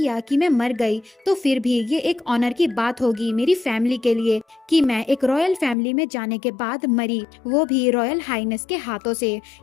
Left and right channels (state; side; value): drops out; right; at 5.8 s